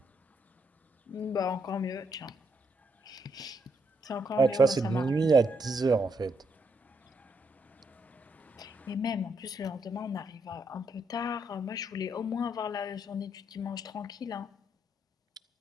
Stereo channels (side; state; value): both; normal; correlation 0.76